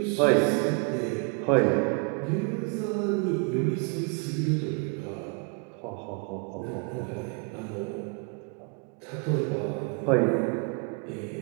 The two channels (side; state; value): left; quieter; 34.0 dB